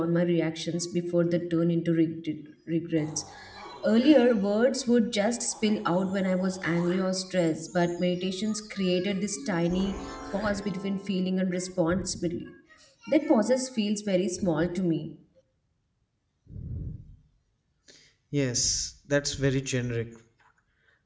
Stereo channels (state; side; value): identical; both; correlation 1.00